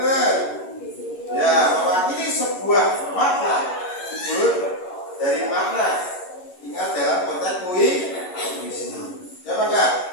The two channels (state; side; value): late; right; 11 ms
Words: Ya, mewakili sebuah makna wujud dari makna. Ingat dalam konteks puisi. Ya Pak Kak?